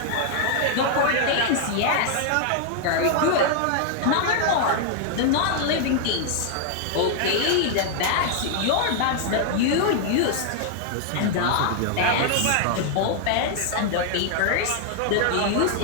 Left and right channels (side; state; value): both; different; correlation 0.00